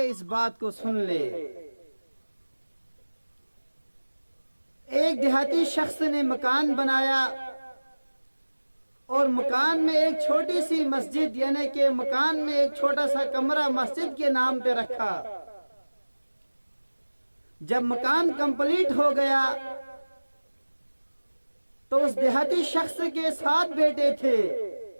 اس بات کو سن لے. ایک دیہاتی شخص نے مکان بنایا اور مکان میں ایک چھوٹی سی مسجد، یعنی کہ مکان میں ایک چھوٹا سا کمرہ مسجد کے نام پہ رکھا. جب مکان کمپلیٹ ہو گیا تو اس دیہاتی شخص کے 7 بیٹے تھے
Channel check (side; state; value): both; inverted; correlation -1.00